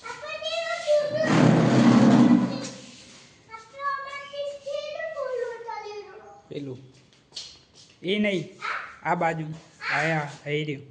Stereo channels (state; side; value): identical; both; correlation 1.00